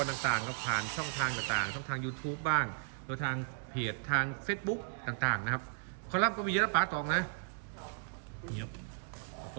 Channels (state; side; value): silent; left; digital silence